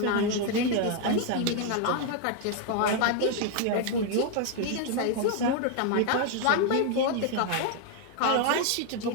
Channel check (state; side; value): different; both; correlation 0.00